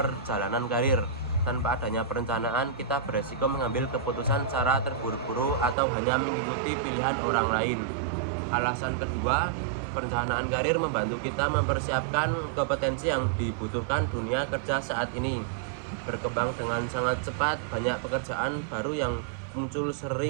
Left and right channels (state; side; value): drops out; left; at 5.8 s